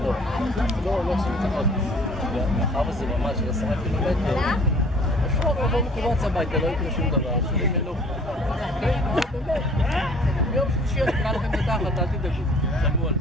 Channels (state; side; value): normal; both; correlation 0.52